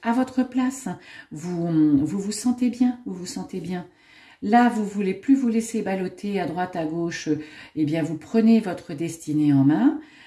à votre place, vous sentez bien, Là, vous ne voulez plus vous laisser balloter à droite, à gauche, eh bien, vous prenez votre destinée en main,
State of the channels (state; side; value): identical; both; correlation 1.00